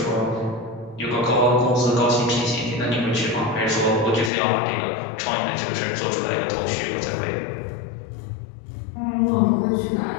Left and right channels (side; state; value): right; drops out; at 4.3 s